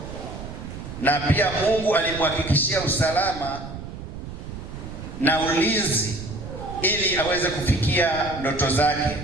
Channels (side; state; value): right; noise; rumble, 10 dB below the sound